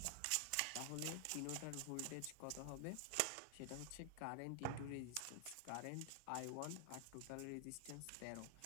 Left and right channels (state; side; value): different; both; correlation 0.00